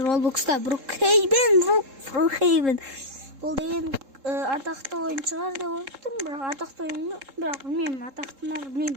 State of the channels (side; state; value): left; late; 3.7 ms